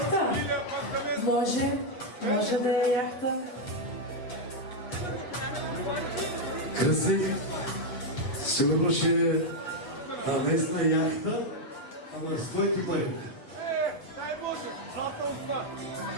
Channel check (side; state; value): right; late; 8.3 ms